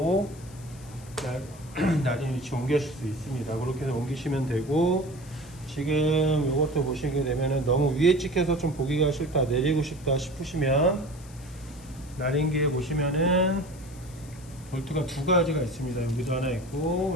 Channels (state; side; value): noise; left; hiss, 22 dB below the sound